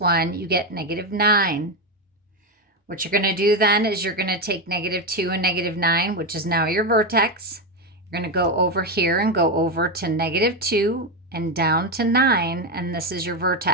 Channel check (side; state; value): both; normal; correlation 0.10